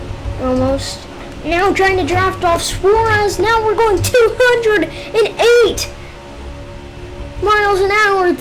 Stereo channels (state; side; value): identical; both; correlation 1.00